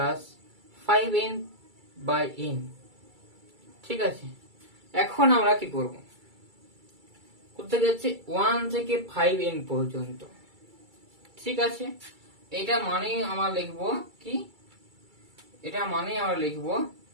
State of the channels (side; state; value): left; late; 2.3 ms